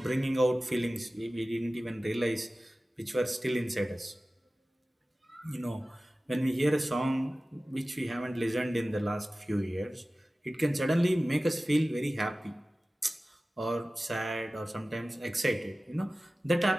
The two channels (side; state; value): both; normal; correlation 0.96